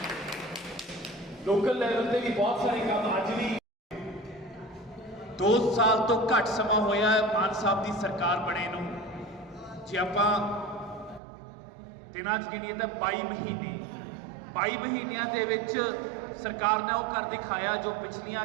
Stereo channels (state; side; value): drops out; left; at 11.2 s